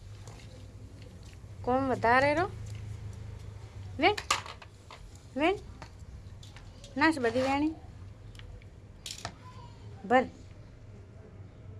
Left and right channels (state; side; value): identical; both; correlation 1.00